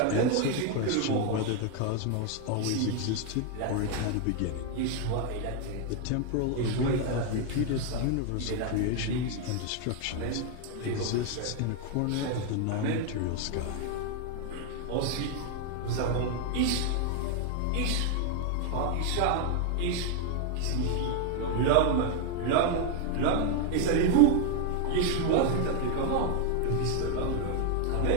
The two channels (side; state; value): both; different; correlation 0.01